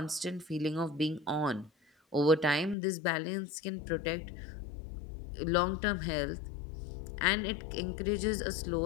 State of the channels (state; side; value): drops out; right; at 2.8 s